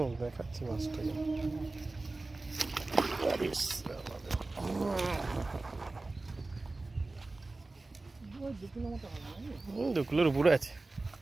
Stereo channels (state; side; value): quieter; left; 3.2 dB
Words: দেখাচ্ছি মাছটাকে। 2 কিলো মতো হবে নাকি? 2 কিলোর উপরে আছে।